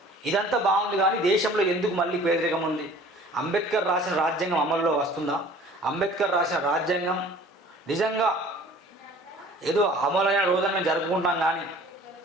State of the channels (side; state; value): both; normal; correlation 0.48